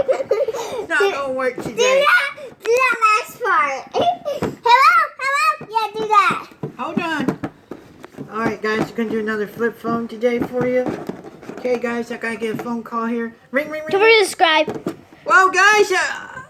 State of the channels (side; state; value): both; identical; correlation 1.00